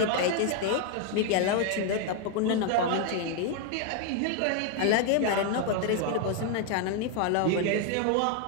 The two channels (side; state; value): both; different; correlation 0.01